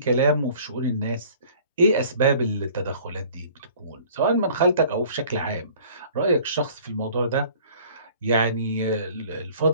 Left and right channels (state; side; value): inverted; both; correlation -0.51